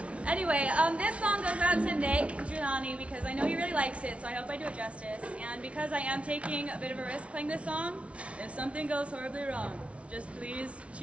Anyway, this song goes out to Nick Giuliani because I know he really likes it, so I hope I do it justice. And because I am taking a bit of a risk playing this song, if something goes horribly wrong, just please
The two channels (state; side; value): late; left; 0.062 ms